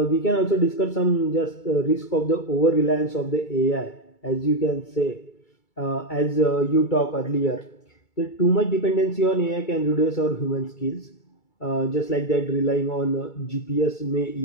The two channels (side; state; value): right; late; 2.3 ms